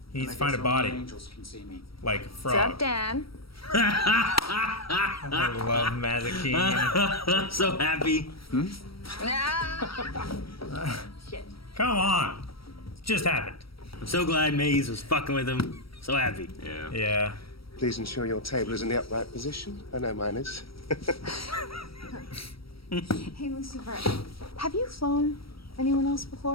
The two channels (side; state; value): right; late; 0.75 ms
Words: He needs to find a body. Angels can see me. Like a What's frog. up, Dan? I love Mazikeen. So happy. Come on. It just happened. I'm so glad Maze was fucking with him. So happy. Yeah. Yeah. Please ensure your table is in the upright position. I know mine is. Hey, Lucifer, have you flown anyone else